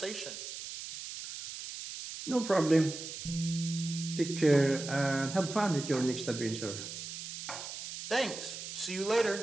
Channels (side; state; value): right; noise; hiss, 9 dB below the sound